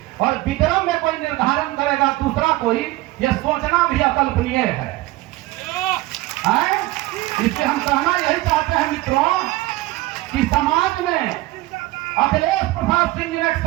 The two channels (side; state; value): left; quieter; 18.9 dB